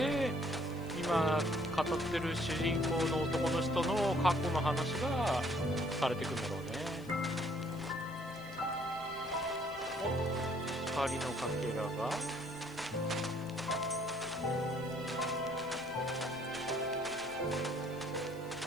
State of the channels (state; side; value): noise; left; hiss, 24 dB below the sound